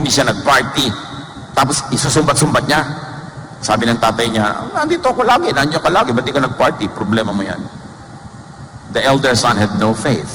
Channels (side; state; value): both; identical; correlation 1.00